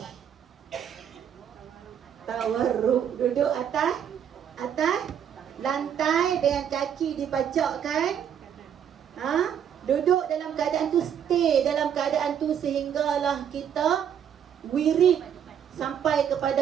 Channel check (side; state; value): left; quieter; 8.7 dB